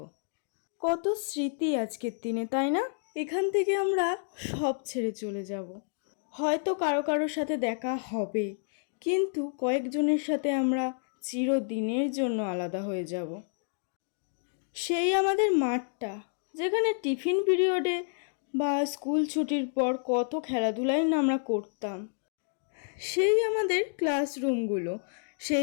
কত স্মৃতি আজকের দিনে, তাই না? এখান থেকে আমরা সব ছেড়ে চলে যাব। হয়তো কারো কারোর সাথে দেখা হবে, কিন্তু কয়েকজনের সাথে আমরা চিরদিনের জন্য আলাদা হয়ে যাব। সেই আমাদের মাঠটা, যেখানে টিফিন পিরিয়ডে বা স্কুল ছুটির পর কত খেলাধুলাই না আমরা করতাম। সেই আমাদের ক্লাসরুমগুলো,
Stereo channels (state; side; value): silent; right; digital silence